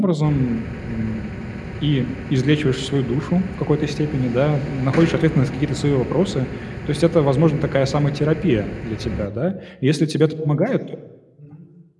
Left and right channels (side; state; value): both; identical; correlation 1.00